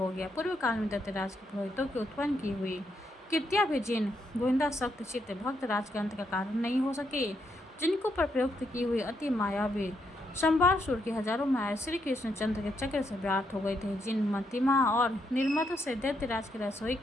गया। पूर्व काल में दैत्यराज के पुरोहितों की उत्पन्न की हुई कृत्या भी जिन गोविंदा सख्त चित्त भक्त राज के अंत का कारण नहीं हो सके, जिनको पर प्रयुक्त की हुई अति मायावी संभारसुर की हजारों माया श्री कृष्णचंद्र के चक्र से व्याप्त हो गए थे, जिन मतिमा और निर्मत से दैत्यराज के रसोई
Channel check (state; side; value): normal; both; correlation 0.78